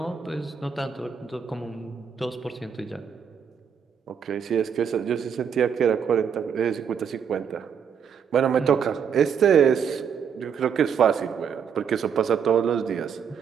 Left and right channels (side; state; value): left; quieter; 7.3 dB